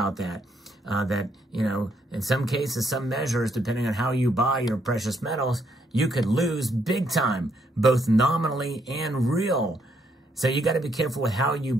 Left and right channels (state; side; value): normal; both; correlation 0.73